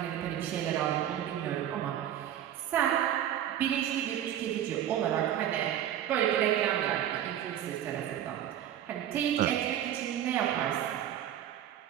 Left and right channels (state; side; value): quieter; left; 11.0 dB